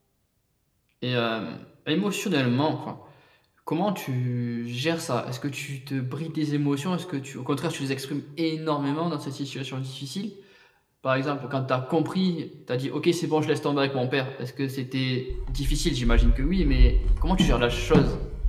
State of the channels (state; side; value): identical; both; correlation 1.00